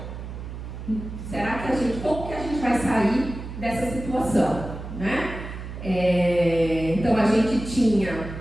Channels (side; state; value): right; noise; hum, 9 dB below the sound